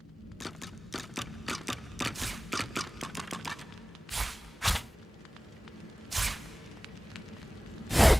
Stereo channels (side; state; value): both; normal; correlation 0.98